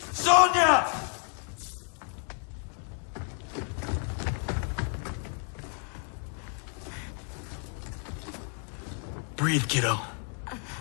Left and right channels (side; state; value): right; quieter; 39.1 dB